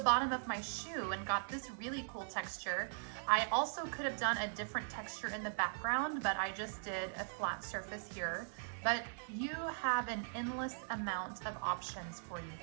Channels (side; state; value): left; silent; digital silence